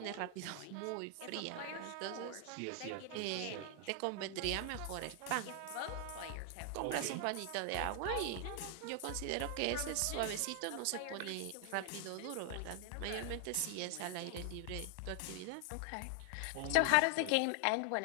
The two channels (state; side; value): different; both; correlation 0.00